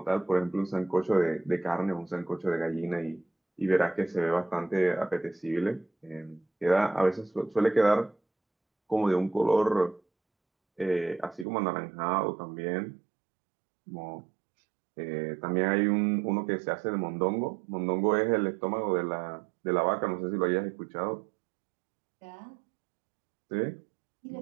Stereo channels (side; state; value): left; drops out; at 11.5 s